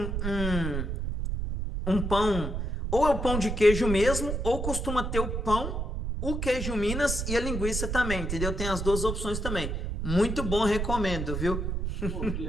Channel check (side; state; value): right; noise; rumble, 2 dB below the sound